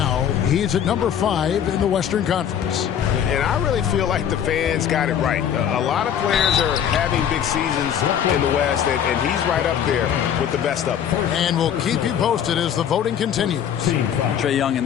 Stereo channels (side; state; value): right; quieter; 9.1 dB